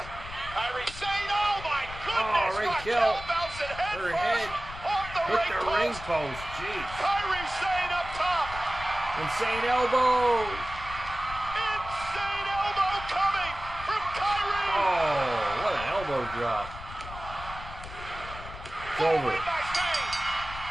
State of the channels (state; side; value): noise; left; rumble, 12 dB below the sound